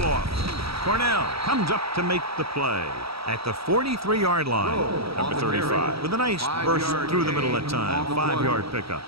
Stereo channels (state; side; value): late; left; 0.76 ms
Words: off. Cornell comes up to make the play at the 43-yard line. Number 35 with a nice burst through the middle that time. 5-yard pickup.